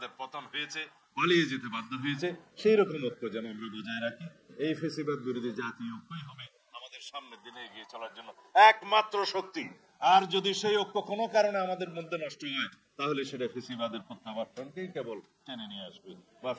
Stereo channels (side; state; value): both; identical; correlation 1.00